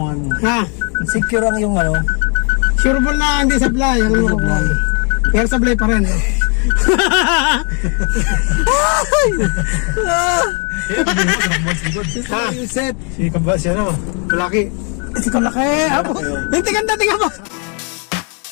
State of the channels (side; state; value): right; quieter; 37.4 dB